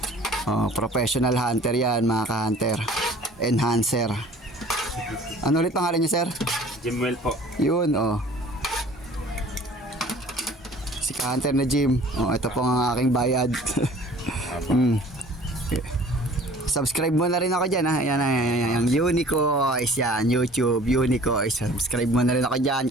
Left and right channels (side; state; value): both; normal; correlation 0.49